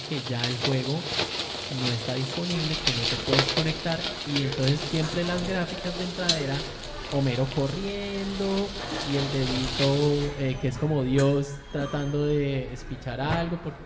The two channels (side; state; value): both; identical; correlation 1.00